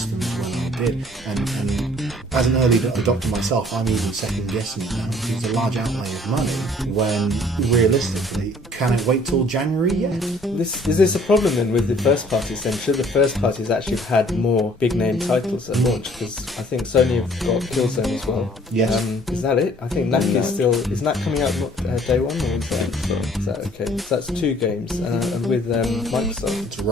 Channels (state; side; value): normal; both; correlation 0.57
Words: when I did, and as an early adopter myself, I'm even second guessing it now. It's a large outlay of money when realistically, can it wait till January yet? Is this a problem then with the first parties then? Should the first parties actually have had more big name titles at launch? Because I think Sony have got Killzone as well. Yes. Is that it? I think NAC is still, is NAC coming out day one, or is that okay? So that's 2 games, and with Microsoft. It's